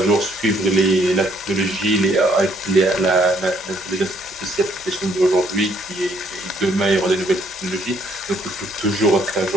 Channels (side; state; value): both; normal; correlation 0.67